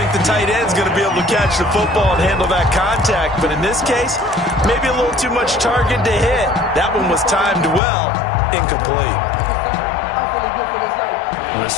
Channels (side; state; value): right; drops out; at 7.8 s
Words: the tight end's going to be able to catch the football and handle that contact, but in this case, maybe a little too much target to hit. That one was timed well, incomplete. The